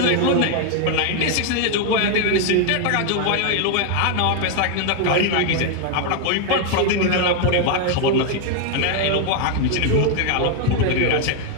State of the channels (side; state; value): both; different; correlation 0.01